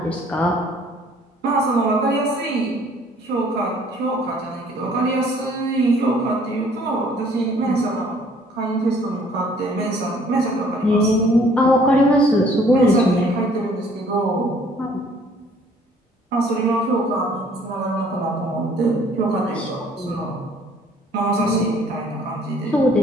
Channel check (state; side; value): normal; both; correlation 0.58